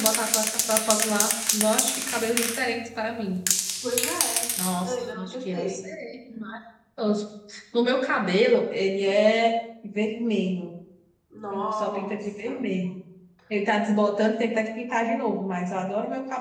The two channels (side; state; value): both; identical; correlation 1.00